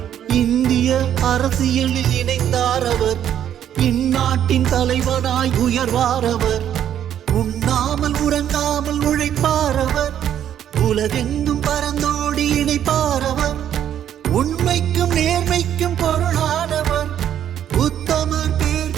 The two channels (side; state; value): left; quieter; 10.2 dB